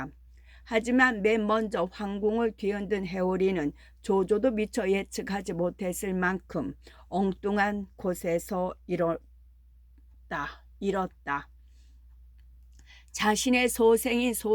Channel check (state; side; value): identical; both; correlation 1.00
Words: 하지만 맨 먼저 황궁을 뒤흔든 해오리는 조조도 미처 예측하지 못했을 만큼 엉뚱한 곳에서 잃었다. 자신의 소생인